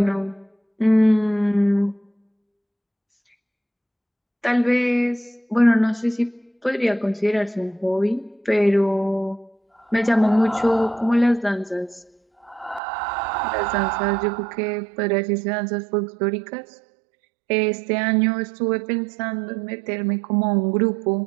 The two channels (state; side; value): drops out; left; at 12.8 s